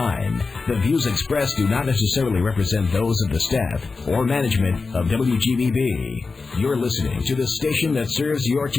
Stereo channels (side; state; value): right; quieter; 4.2 dB